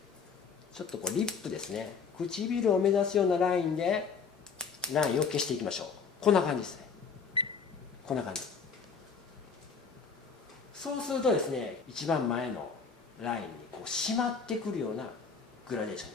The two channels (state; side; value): quieter; right; 5.7 dB